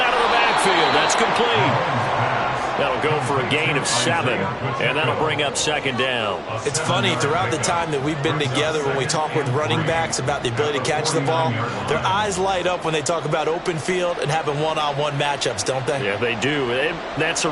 of the backfield. That's complete. That'll go for a gain of 7, and that'll bring up second down. It's funny, throughout the time that we've been together, when we talk with running backs about the ability to catch the ball, their eyes light up when they talk about open field and having one-on-one matchups, don't they? Yeah, they do. And that's the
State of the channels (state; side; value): identical; both; correlation 1.00